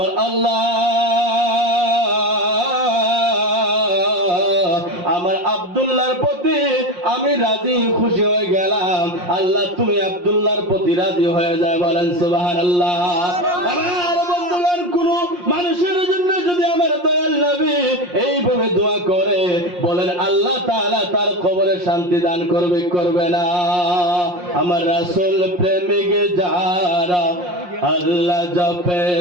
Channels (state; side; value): late; left; 5.6 ms